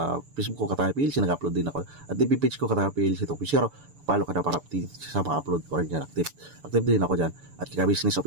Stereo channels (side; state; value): left; late; 6.9 ms